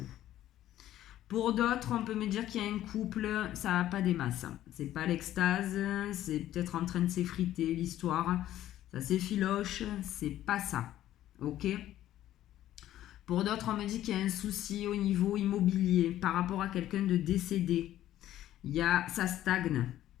Pour d'autres, on peut me dire qu'il y a un couple, ça n'a pas des masses. C'est pas l'extase, c'est peut-être en train de s'effriter l'histoire. Ça s'effiloche, c'est pas ça. Ok. Pour d'autres, on me dit qu'il y a un souci au niveau immobilier par rapport à quelqu'un de décédé. Ça stagne.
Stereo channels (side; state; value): right; quieter; 13.1 dB